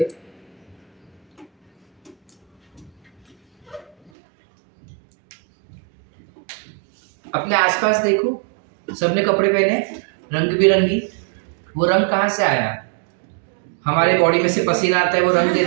अपने आसपास देखो, सबने कपड़े पहने रंग बिरंगी। वो रंग कहाँ से आया? हमारे बॉडी में से पसीना आता है, वो रंग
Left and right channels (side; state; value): left; drops out; at 4.1 s